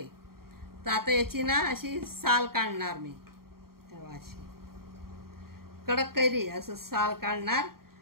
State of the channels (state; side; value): late; left; 0.93 ms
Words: तर आता याची ना अशी साल काढणार मी, अशी कडक कैरी असं साल काढणार